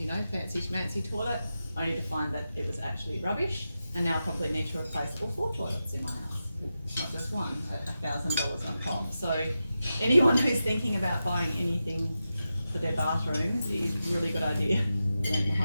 fancy schmancy toilet. Only to find that it was actually rubbish, and now I probably need to replace all 4 toilets in my house, not just one, at $1,000 on top. So anyone who's thinking about buying anything for their bathrooms, it is a really good idea, learn the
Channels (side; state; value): both; inverted; correlation -0.91